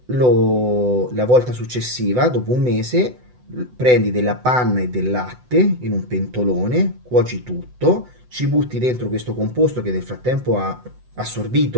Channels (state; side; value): late; left; 8.0 ms